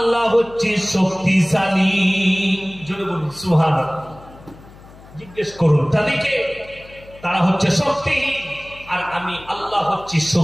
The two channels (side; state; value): left; noise; hum, 21 dB below the sound